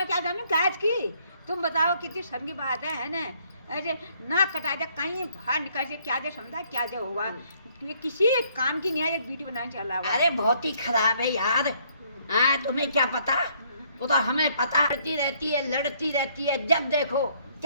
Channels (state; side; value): inverted; both; correlation -0.66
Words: जानूँ गायज की? तुम बताओ कितनी शर्म की बात है ना? ऐसे नाक कटा दिया, कहीं बाहर निकल से क्या दे समझा, क्या दे हुआ? ये किसी काम की नहीं है, एक वीडियो बनाने चला हुआ। अरे बहुत ही खराब है यार। तुम्हें क्या पता? वो तो हमें पता, लड़ती रहती है, जब देखो